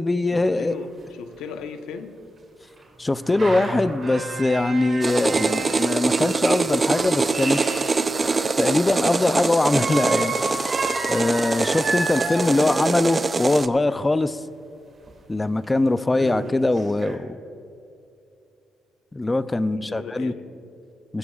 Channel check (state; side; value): normal; both; correlation 0.93